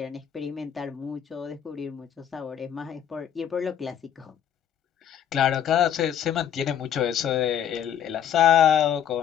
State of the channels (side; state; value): right; quieter; 9.5 dB